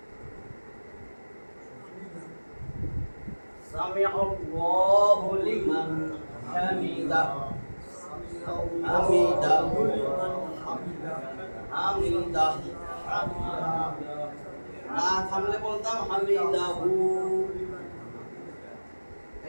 সামিআল্লাহু লিমান হামিদাহ, হামিদাহু হামিদাহ। না থামলে বলতাম হামিদাহু।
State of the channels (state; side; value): inverted; both; correlation -1.00